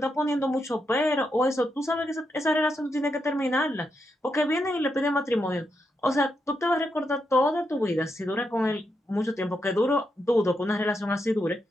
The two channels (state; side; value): normal; both; correlation 0.83